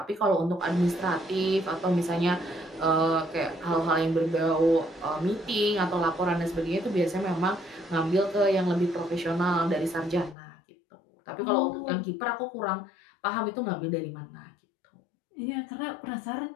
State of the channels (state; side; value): drops out; right; at 10.4 s